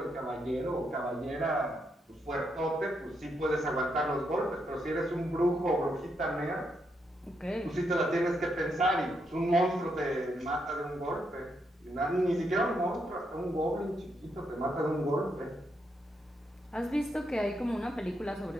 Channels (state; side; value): normal; both; correlation 0.80